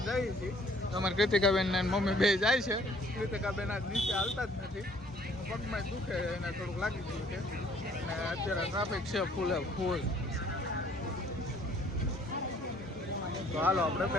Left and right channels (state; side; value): normal; both; correlation 0.59